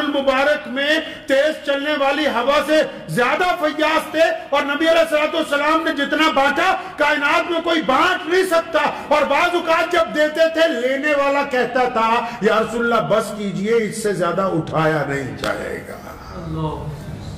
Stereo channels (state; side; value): identical; both; correlation 1.00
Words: میں تیز چلنے والی ہوا سے زیادہ فیاض تھے، اور نبی علیہ السلام نے جتنا بانٹا کائنات میں کوئی بانٹ نہیں سکتا. اور بعض اوقات جب دیتے تھے لینے والا کہتا تھا یا رسول اللہ بس کیجئے، اس سے زیادہ اٹھایا نہیں جائے گا.